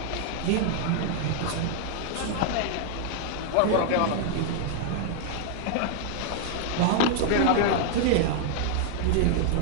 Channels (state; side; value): different; both; correlation 0.00